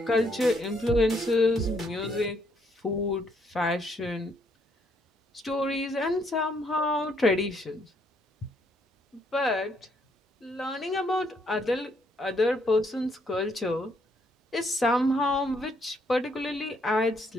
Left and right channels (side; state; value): both; normal; correlation 0.71